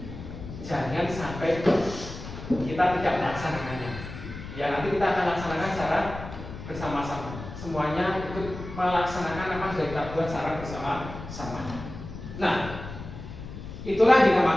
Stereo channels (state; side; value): noise; left; rumble, 11 dB below the sound